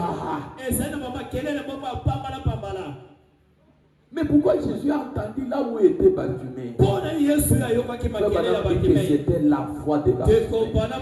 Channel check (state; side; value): identical; both; correlation 1.00